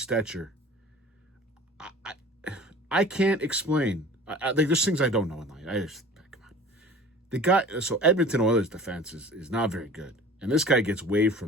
I can't explain. There's things I don't know in life. Come on. The guy, so Edmonton Oilers defense is not very good. And this guy gets waived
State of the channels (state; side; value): normal; both; correlation 0.43